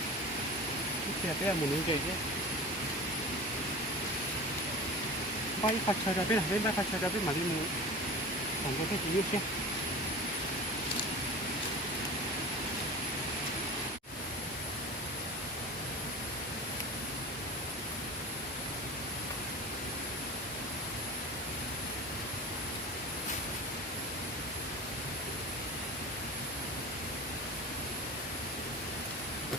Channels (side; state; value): both; normal; correlation 0.34